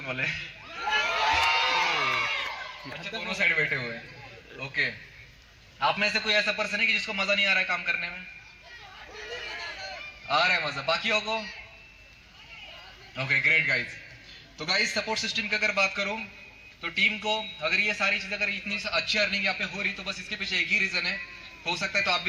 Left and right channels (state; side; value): identical; both; correlation 1.00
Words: वाले? अच्छा, दोनों साइड बैठे हुए हैं। ओके, आप में से कोई ऐसा पर्सन है कि जिसको मजा नहीं आ रहा है काम करने में? आ रहा है मजा बाकियों को? Okay, great guys. तो गाइस सपोर्ट सिस्टम की अगर बात करूं तो टीम को अगर ये सारी चीजें, अगर इतनी अच्छी अर्निंग यहाँ पे हो रही तो बस इसके पीछे एक ही रीजन है, हो सकता है तो आप